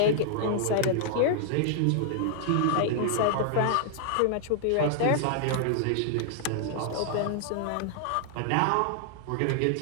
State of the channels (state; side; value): different; both; correlation -0.01